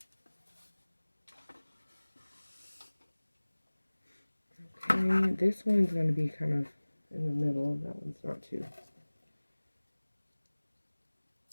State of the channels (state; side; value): inverted; both; correlation -1.00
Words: Okay, this one's going to be kind of in the middle. That one's not too.